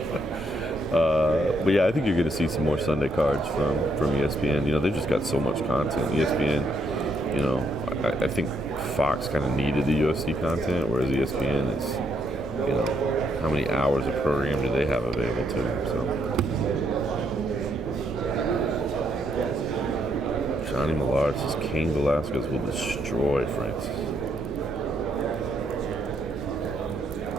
But yeah, I think you're going to see some more Sunday cards from ESPN. They've just got so much content. ESPN, I think Fox kind of needed the UFC content, whereas ESPN is, how many hours of program do they have available to them? So, Johnny Millard says Cain Velasquez will destroy Francis.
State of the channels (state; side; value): normal; both; correlation 0.74